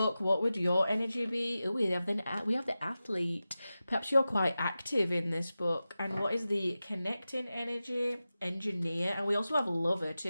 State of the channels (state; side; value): inverted; both; correlation -0.94